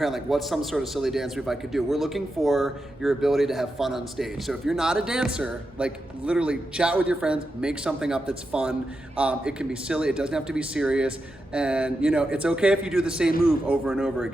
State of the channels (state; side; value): normal; both; correlation 0.88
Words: like, what's some sort of silly dance move I could do? We're looking for your ability to have fun on stage. So if you're not a dancer, like literally chat with your friends, make something up that's fun. It can be silly, it doesn't have to be serious. And you know, it's okay if you do the same move over and over